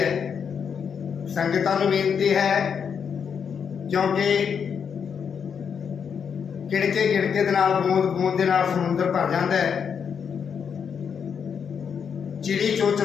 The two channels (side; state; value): right; quieter; 7.0 dB